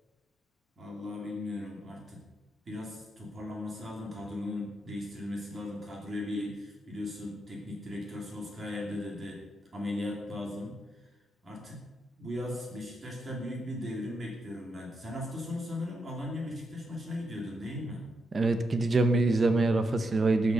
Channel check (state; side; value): normal; both; correlation 0.83